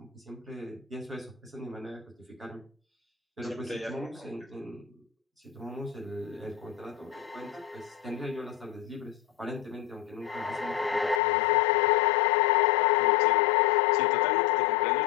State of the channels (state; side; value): drops out; right; at 11.2 s